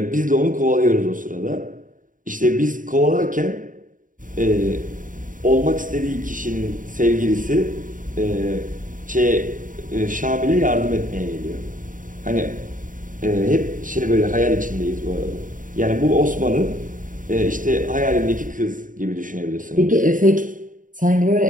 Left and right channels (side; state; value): left; late; 0.39 ms